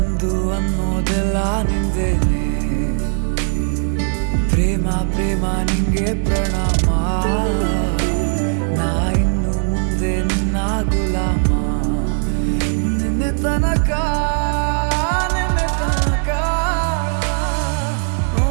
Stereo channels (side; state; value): left; silent; digital silence